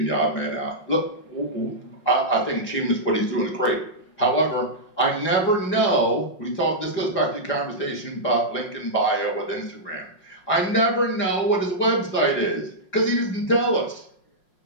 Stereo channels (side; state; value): right; late; 5.5 ms